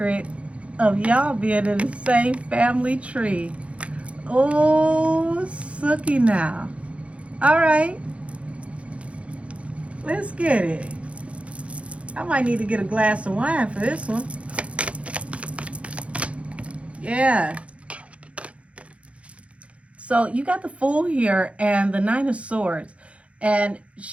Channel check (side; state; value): left; late; 0.062 ms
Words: of y'all being in the same family tree. Oh, sucky now. All right. Let's get it. I might need to get a glass of wine for this one. Yeah. So you got the Fool here and the Nine of Swords. And